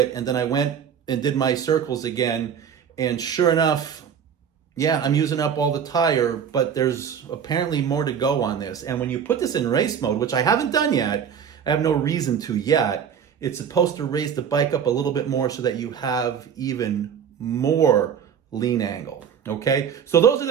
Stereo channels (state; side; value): quieter; left; 7.8 dB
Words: And then I went and did my circles again. And sure enough, yeah, I'm using up all the tire, but there's apparently more to go on this. And when you put this in race mode, which I haven't done yet, I have no reason to yet, It's supposed to raise the bike up a little bit more so that you have even more lean angle, okay? So those are